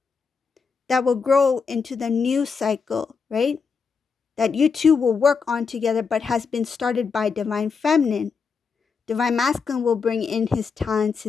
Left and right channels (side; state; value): right; quieter; 5.5 dB